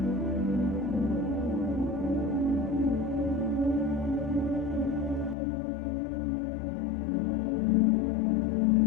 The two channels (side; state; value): right; drops out; at 5.4 s